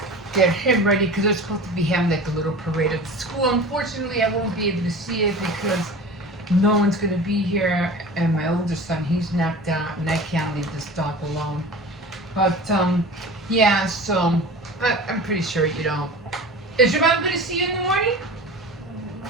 get him ready because they're supposed to be having like a little parade at the school. Unfortunately, I won't be able to see it because no one's going to be here, and my oldest son, he's knocked out, and I can't leave this dog alone. But, yeah, so, but I'm pretty sure you don't. Is your mom going to see you in the morning?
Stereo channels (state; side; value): normal; both; correlation 0.36